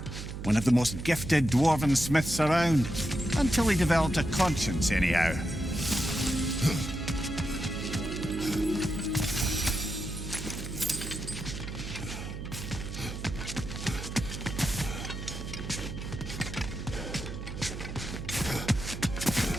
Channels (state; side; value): noise; right; hum, 8 dB below the sound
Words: One of the most gifted dwarven smiths around. Until he developed a conscience, anyhow.